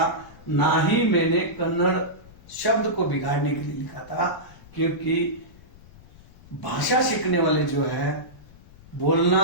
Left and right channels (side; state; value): left; noise; rumble, 23 dB below the sound